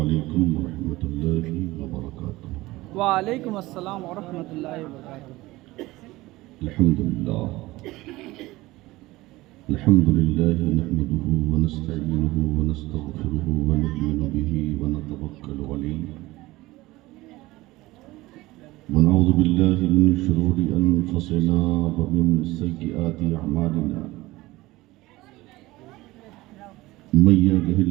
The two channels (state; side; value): quieter; left; 19.2 dB